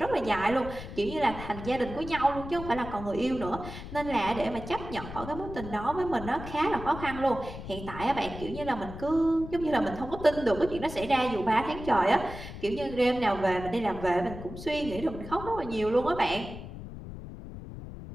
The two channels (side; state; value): left; noise; rumble, 11 dB below the sound